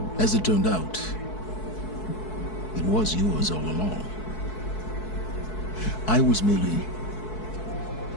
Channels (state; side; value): late; right; 4.6 ms